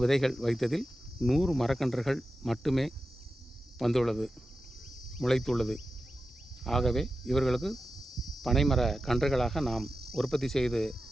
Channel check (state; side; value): normal; both; correlation 0.92